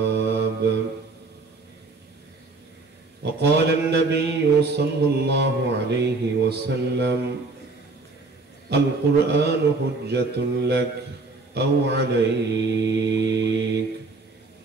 وقال النبي صلى الله عليه وسلم القرآن حجة لك أو عليك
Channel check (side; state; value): left; quieter; 3.6 dB